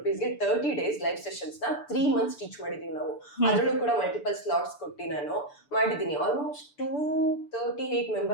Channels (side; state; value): right; late; 6.9 ms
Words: 30 ಡೇಸ್ ಲೈವ್ ಸೆಷನ್ಸ್ ನ 3 ಮಂತ್ಸ್ ಟೀಚ್ ಮಾಡಿದೀವಿ ನಾವು. ಅದ್ರಲ್ಲೂ ಕೂಡ ಮಲ್ಟಿಪಲ್ ಸ್ಲಾಟ್ಸ್ ಕೊಟ್ಟು ನಾನು ಮಾಡಿದೀನಿ. ಆಲ್ಮೋಸ್ಟ್ 238